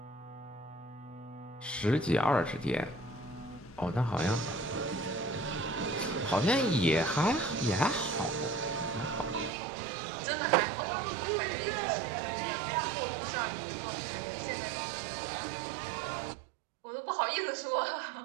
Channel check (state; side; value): drops out; left; at 9.5 s